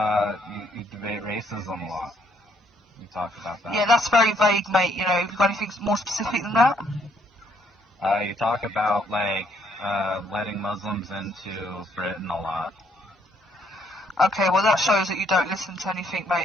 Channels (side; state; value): both; normal; correlation 0.69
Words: debate racism a lot. You talk about that. Yeah, that's very vague, mate. You know, have you got anything more specific than that? You talk about like letting Muslims into Britain a lot. Okay, well that shows that you don't listen to anything,